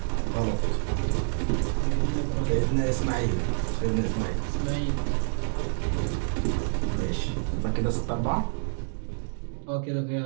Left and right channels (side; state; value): left; silent; digital silence